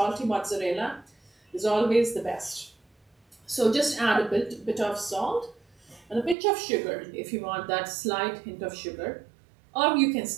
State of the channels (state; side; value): drops out; left; at 6.4 s